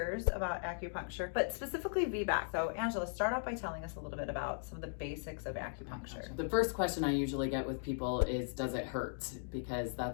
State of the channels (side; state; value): right; silent; digital silence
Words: about acupuncture, but specifically VBAC. So Angela, start off by telling us a little bit about some of the basics of acupuncture. The first question I usually get with people is, does it hurt? Because